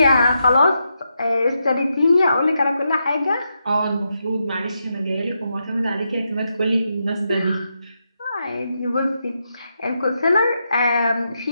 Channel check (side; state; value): both; inverted; correlation -0.84